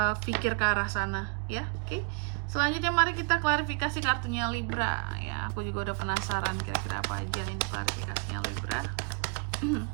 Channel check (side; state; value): left; quieter; 36.5 dB